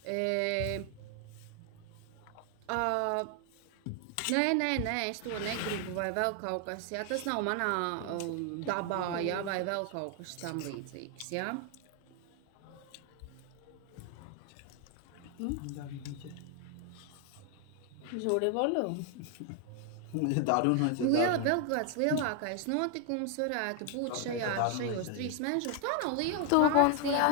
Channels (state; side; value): different; both; correlation 0.00